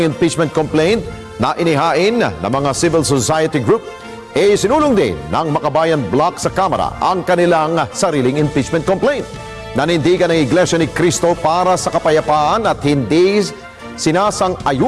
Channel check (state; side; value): identical; both; correlation 1.00